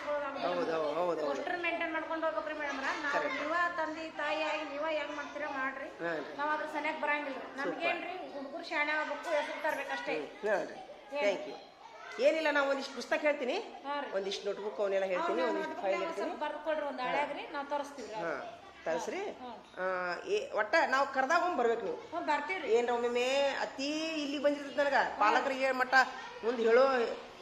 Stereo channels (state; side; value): identical; both; correlation 1.00